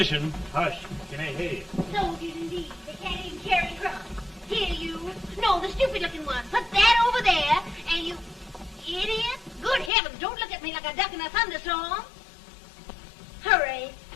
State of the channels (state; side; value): drops out; right; at 9.9 s